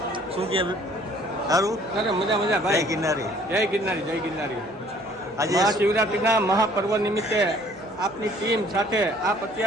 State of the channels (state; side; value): noise; right; hum, 27 dB below the sound